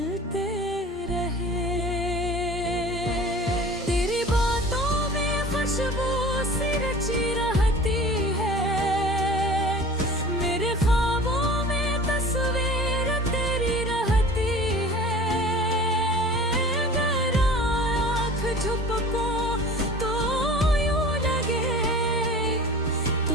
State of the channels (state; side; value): normal; both; correlation 0.41